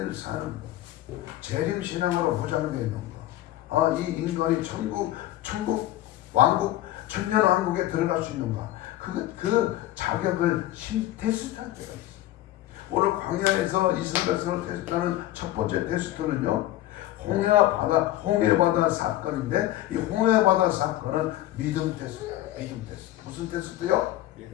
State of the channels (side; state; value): right; quieter; 14.7 dB